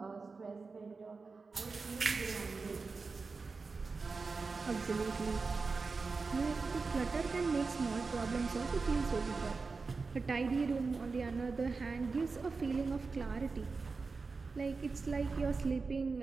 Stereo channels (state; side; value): quieter; left; 4.3 dB